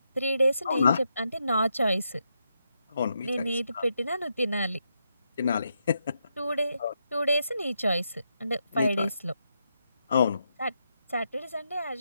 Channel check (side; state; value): both; inverted; correlation -0.82